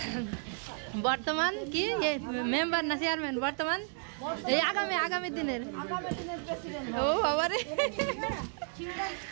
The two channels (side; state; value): left; silent; 56 dB below the other